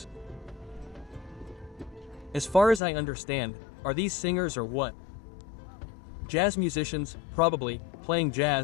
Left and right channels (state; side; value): drops out; right; at 2.8 s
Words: As far as I understand, are these singers or what? Jazz musicians, probably, playing